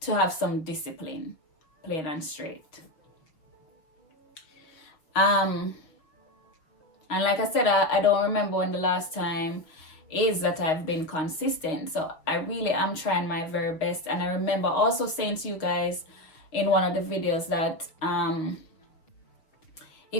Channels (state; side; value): late; right; 6.1 ms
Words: have some discipline, plain and straight. And like I said, I don't remember when the last time is that I've been consistent. So I really am trying my very best. And I remember also saying to you guys in one of the videos that